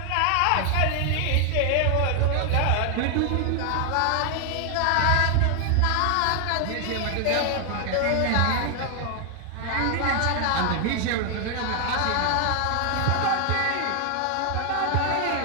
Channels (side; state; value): both; different; correlation 0.00